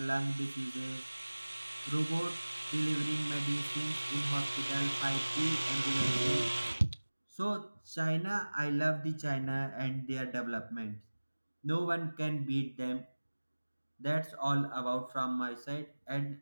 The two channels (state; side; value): inverted; both; correlation -1.00